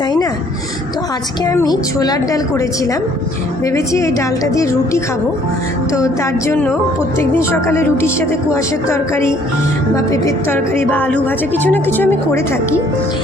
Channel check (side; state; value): both; normal; correlation 0.60